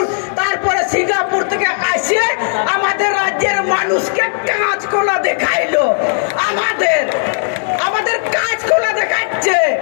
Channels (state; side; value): silent; right; digital silence